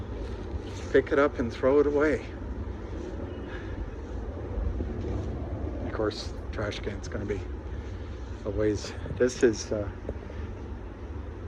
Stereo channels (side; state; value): both; identical; correlation 1.00